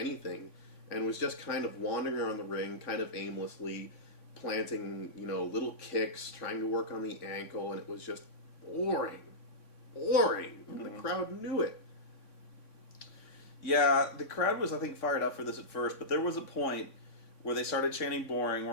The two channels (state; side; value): late; right; 3.6 ms